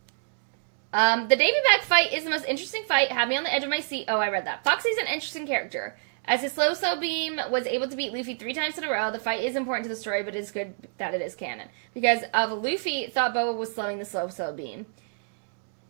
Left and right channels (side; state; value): left; silent; digital silence